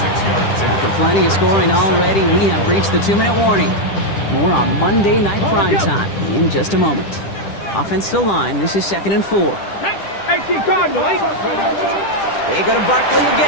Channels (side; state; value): right; late; 10 ms